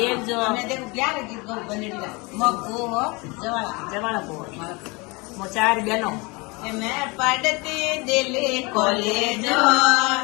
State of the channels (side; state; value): right; quieter; 26.9 dB